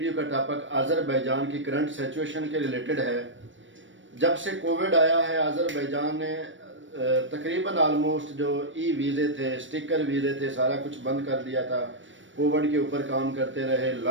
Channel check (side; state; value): left; late; 0.56 ms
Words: का टॉपिक अज़रबैजान की करंट सिचुएशन के रिलेटेड है। जब से कोविड आया है, अज़रबैजान ने तकरीबन आलमोस्ट जो ई वीज़े थे, स्टिकर वीज़े थे, सारा कुछ बंद कर दिया था। कोविड के ऊपर काम करते रहे,